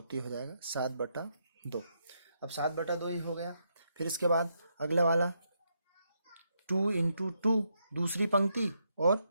तो ये हो जाएगा 7/2। अब 7/2 ही हो गया। फिर इसके बाद अगला वाला 2 इंटू 2 दूसरी पंक्ति और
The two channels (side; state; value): both; inverted; correlation -0.80